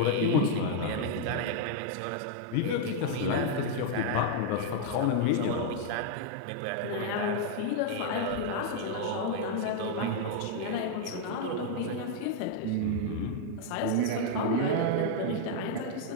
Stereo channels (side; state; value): both; different; correlation -0.01